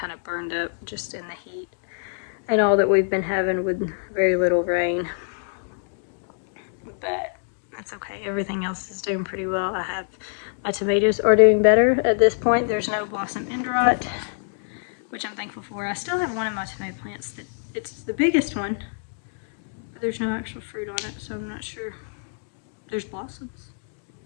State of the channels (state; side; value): silent; right; digital silence